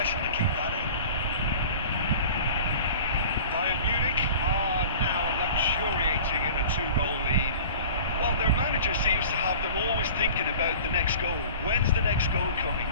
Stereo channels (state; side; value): inverted; both; correlation -0.41